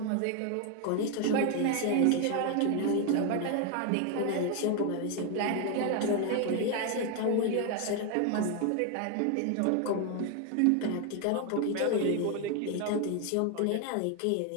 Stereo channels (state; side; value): different; both; correlation 0.01